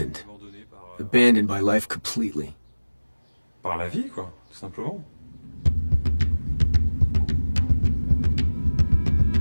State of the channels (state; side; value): inverted; both; correlation -1.00